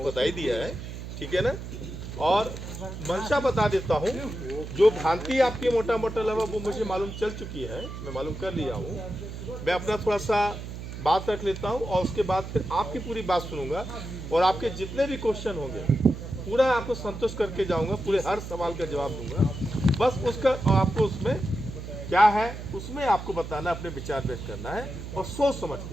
बता ही दिया है, ठीक है ना। और मंशा बता देता हूँ, जो भ्रांति आपकी मोटा मोटा लगा वो मुझे मालूम चल चुकी है, मैं मालूम कर लिया हूँ। मैं अपना थोड़ा सा बात रख लेता हूँ और उसके बाद फिर आपकी पूरी बात सुनूंगा और आपके जितने भी क्वेश्चन होंगे पूरा आपको संतुष्ट करके जाऊंगा, पूरे हर सवाल का जवाब दूंगा। बस उसका आपको उसमें क्या है उसमें आपको बताना, अपने विचार व्यक्त करना है और सोच समझ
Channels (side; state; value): right; noise; hum, 9 dB below the sound